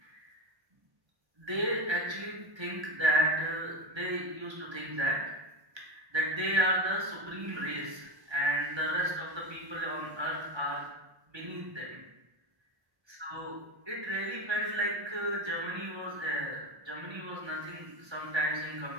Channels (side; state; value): left; late; 1.3 ms